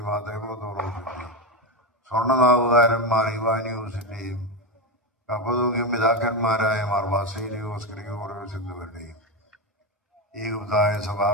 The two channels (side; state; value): both; normal; correlation 0.13